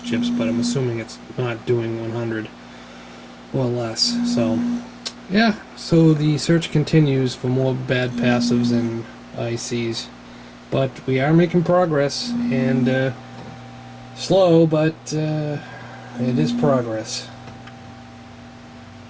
But I'm assuming it's not doing 100 or less. So yeah, so the search continues for more bad passives and ICs. But we are making progress, and slow, but it is progress.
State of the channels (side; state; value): both; identical; correlation 1.00